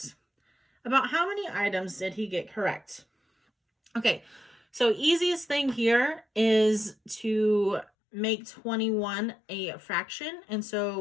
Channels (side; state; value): right; drops out; at 7.9 s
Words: About how many items did he get correct? Okay, so easiest thing here is to make 21 a fraction. And so